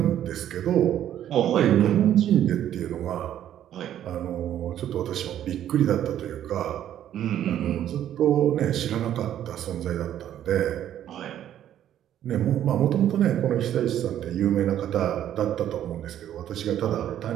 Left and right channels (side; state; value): left; quieter; 11.1 dB